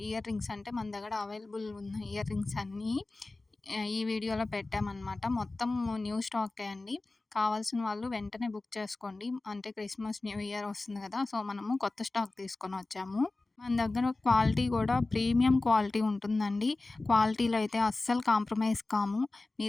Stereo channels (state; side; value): quieter; right; 3.2 dB